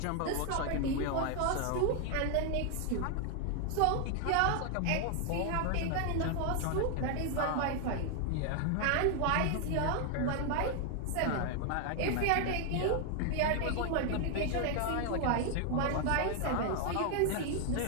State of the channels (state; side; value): different; both; correlation 0.00